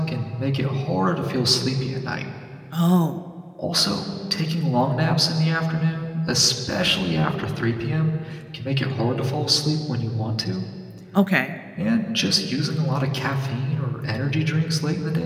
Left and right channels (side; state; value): both; identical; correlation 1.00